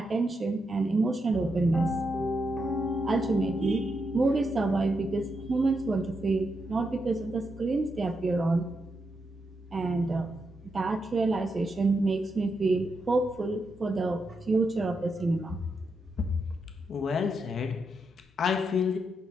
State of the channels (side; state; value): both; normal; correlation 0.83